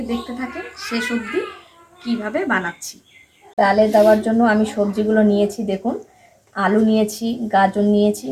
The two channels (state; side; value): identical; both; correlation 1.00